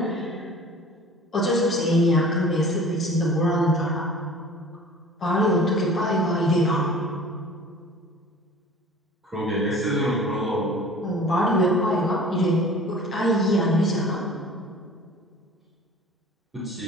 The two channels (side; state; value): both; normal; correlation 0.44